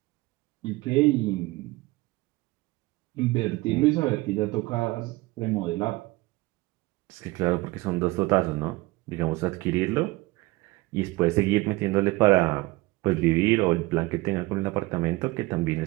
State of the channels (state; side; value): quieter; left; 21.4 dB